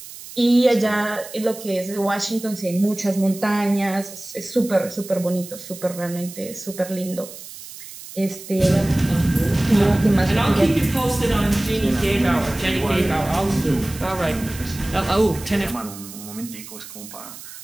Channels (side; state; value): right; noise; hiss, 14 dB below the sound